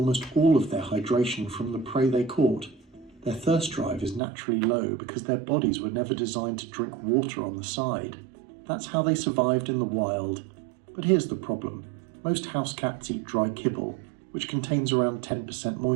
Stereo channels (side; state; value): left; drops out; at 4.2 s